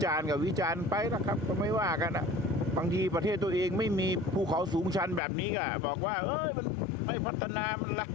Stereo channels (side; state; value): right; drops out; at 5.2 s